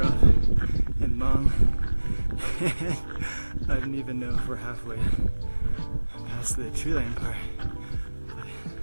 and long. I don't even know if we're halfway past the tree line part.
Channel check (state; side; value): inverted; both; correlation -1.00